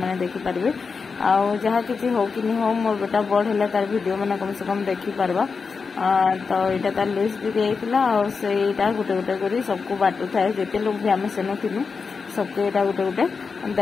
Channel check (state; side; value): quieter; right; 5.1 dB